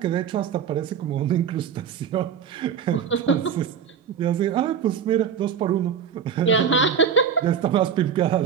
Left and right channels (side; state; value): left; quieter; 7.4 dB